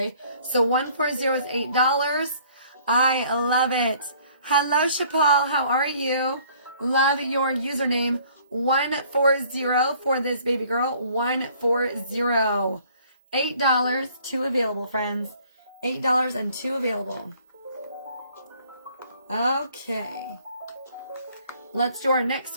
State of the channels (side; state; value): both; inverted; correlation -0.58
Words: So 140 is $8. I love it. Hello, Chapal. How are you? Love your username. 140 for this baby girl. 140. $8. 2 available, friends. $8 and 2 available. Okay. Let's do our